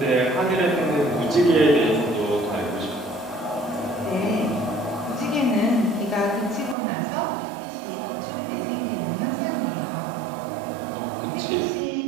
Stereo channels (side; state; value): left; drops out; at 6.8 s